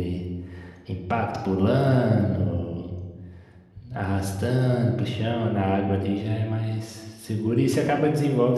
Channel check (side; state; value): both; identical; correlation 1.00